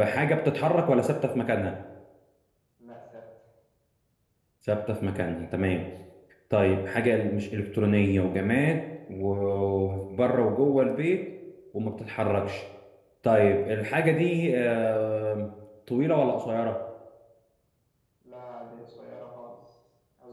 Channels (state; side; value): identical; both; correlation 1.00